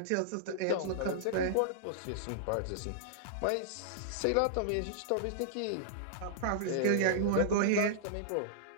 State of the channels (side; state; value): both; different; correlation -0.02